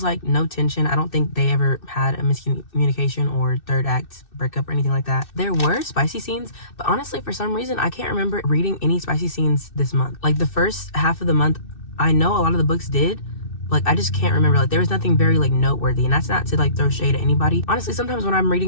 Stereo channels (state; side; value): late; right; 2.6 ms